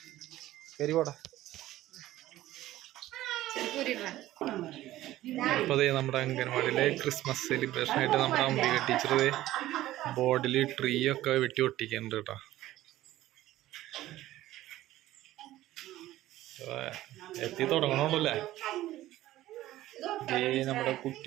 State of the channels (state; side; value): quieter; left; 15.2 dB